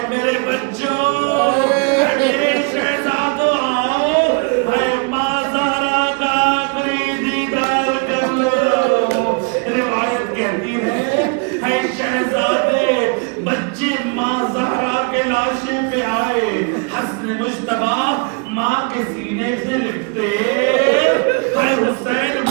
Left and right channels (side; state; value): left; quieter; 34.8 dB